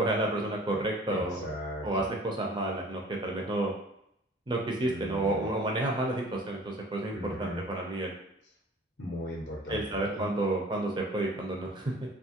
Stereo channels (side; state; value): both; normal; correlation 0.48